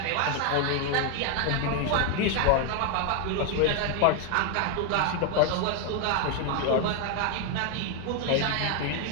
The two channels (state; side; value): different; both; correlation 0.01